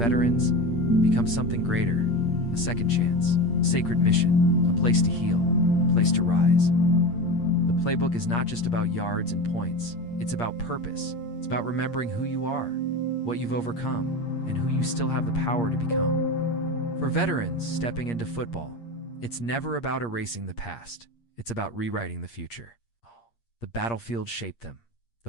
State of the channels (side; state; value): right; late; 8.6 ms